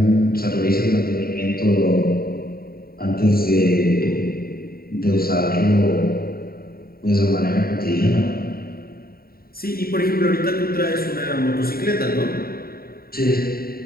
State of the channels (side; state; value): right; late; 0.43 ms